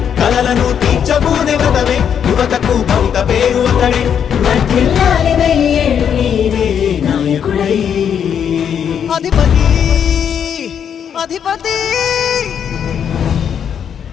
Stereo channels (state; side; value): quieter; right; 8.2 dB